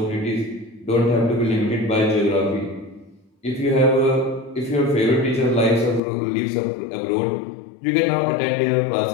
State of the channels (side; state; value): right; drops out; at 6.0 s